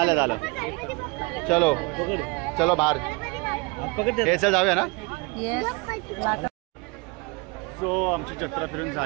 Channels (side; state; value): left; quieter; 28.2 dB